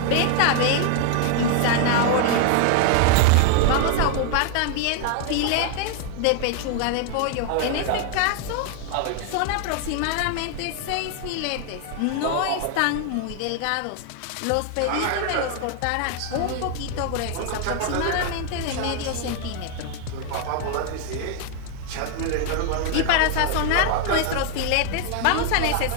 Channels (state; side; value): different; both; correlation 0.00